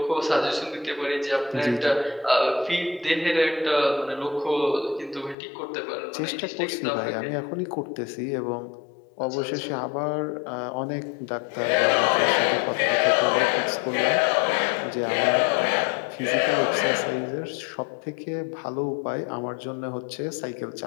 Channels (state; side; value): drops out; right; at 5.4 s